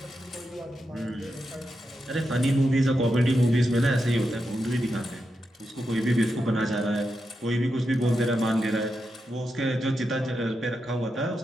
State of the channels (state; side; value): normal; both; correlation 0.87